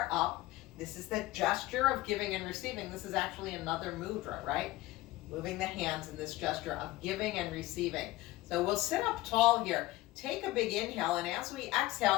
up. This is the gesture of giving and receiving. This is actually another mudra, right? Moving the hands in this gesture of giving and receiving. So we'll sit up tall here. Take a big inhale, and as we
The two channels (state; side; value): quieter; right; 17.8 dB